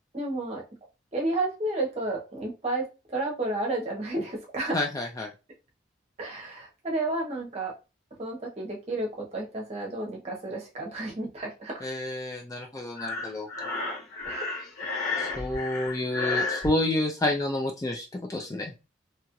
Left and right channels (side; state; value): both; normal; correlation 0.37